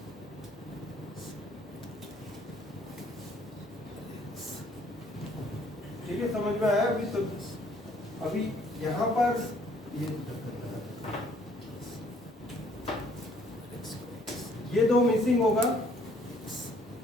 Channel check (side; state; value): both; normal; correlation 0.62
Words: ठीक है, समझ में आया अभी? तो अभी यहाँ पर ये दो मिसिंग होगा,